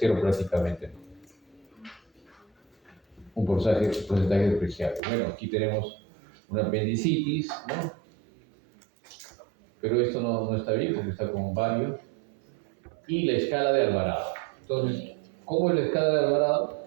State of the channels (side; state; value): left; drops out; at 5.0 s